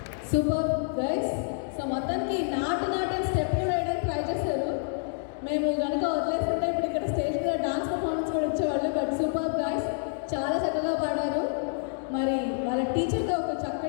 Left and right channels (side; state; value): right; silent; digital silence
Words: Super guys. సో మొత్తానికి నాటు స్టెప్ కూడా వేయడానికి ట్రై చేశారు. మేము కనుక వదిలేస్తుంటే ఇప్పుడు ఇక్కడ స్టేజ్ మీద డాన్స్ పర్ఫార్మెన్స్ కూడా ఇచ్చేవాళ్ళు. బట్ సూపర్ గైస్, చాలా చక్కగా పాడారు. మరి వాళ్ళ టీచర్తో ఒక